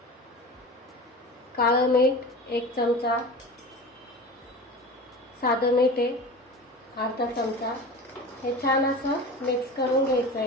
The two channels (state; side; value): normal; both; correlation 0.33